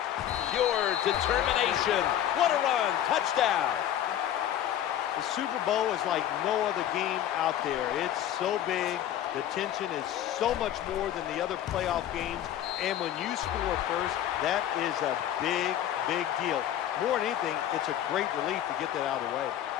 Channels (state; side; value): quieter; right; 11.3 dB